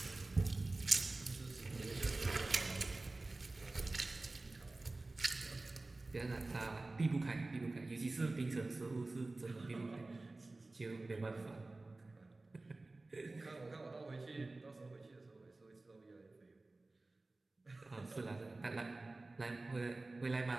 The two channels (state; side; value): quieter; left; 3.1 dB